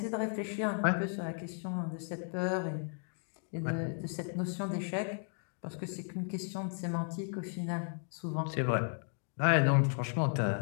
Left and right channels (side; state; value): right; silent; 55 dB below the other